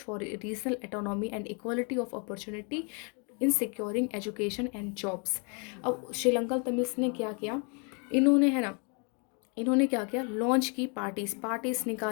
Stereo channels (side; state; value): right; quieter; 36.5 dB